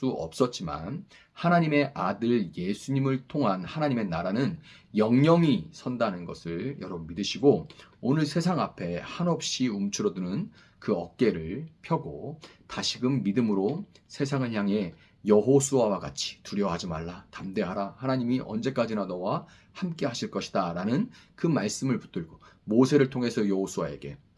없었지만 하나님의 아들 예수님을 통한 하나님의 나라는 영영이 선다는 것을 여러분 믿으시고 오늘 세상 앞에 한없이 움츠러드는 그 어깨를 펴고 다시금 믿음으로 세상을 향해 여호수아와 같이 두려워하지 말라, 담대하라, 하나님이 언제까지나 너와 함께 하실 것이다 라는 그 말씀을 붙들고 모세를 통해서 여호수아에게,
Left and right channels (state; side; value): identical; both; correlation 1.00